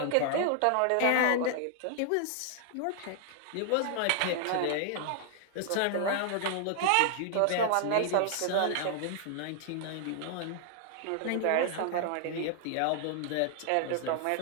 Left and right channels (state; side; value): different; both; correlation 0.00